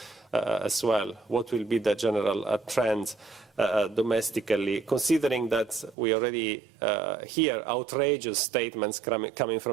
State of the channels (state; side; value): drops out; left; at 6.0 s